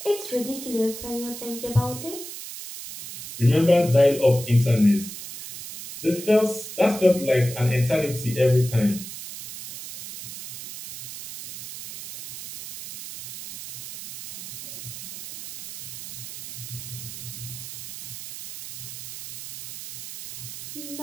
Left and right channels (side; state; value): right; noise; hiss, 10 dB below the sound